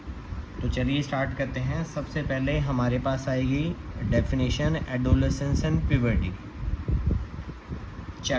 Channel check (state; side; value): identical; both; correlation 1.00